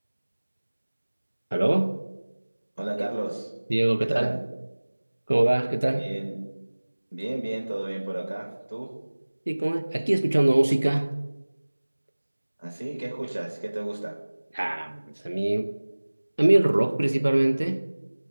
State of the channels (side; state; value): both; inverted; correlation -1.00